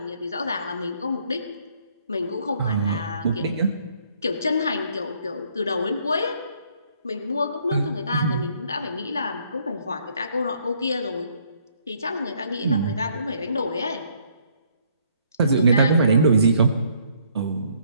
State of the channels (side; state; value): both; inverted; correlation -0.66